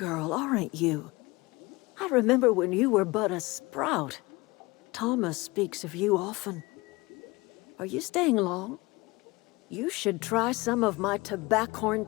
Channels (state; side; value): quieter; right; 22.9 dB